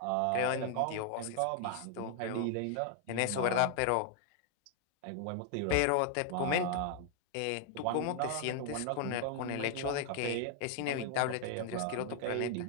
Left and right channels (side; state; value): both; different; correlation 0.00